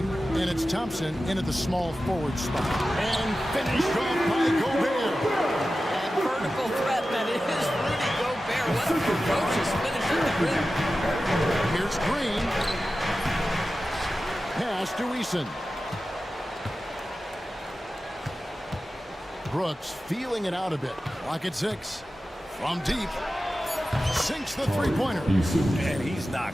and it's Thompson in at the small forward spot. And finished off by Gobert. And vertical threat that is Rudy Gobert. What a ferocious finish at the rim. Here's Green. Pass to Eason. Brooks feeling it out a bit. Lock at 6. From deep. Sinks the three-pointer. And he's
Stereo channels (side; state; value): both; normal; correlation 0.94